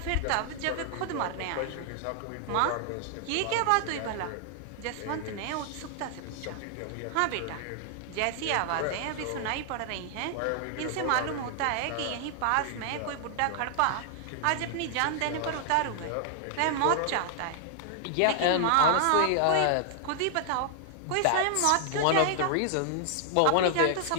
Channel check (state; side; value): different; both; correlation 0.00